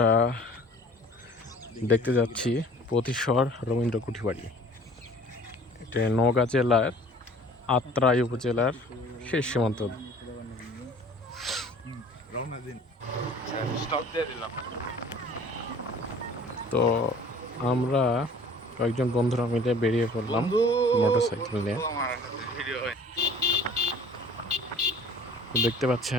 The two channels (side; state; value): both; normal; correlation 0.49